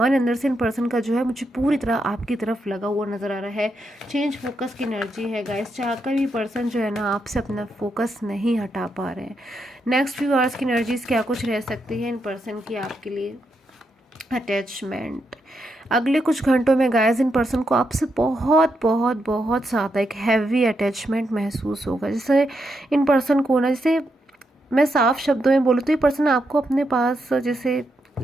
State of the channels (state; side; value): normal; both; correlation 0.82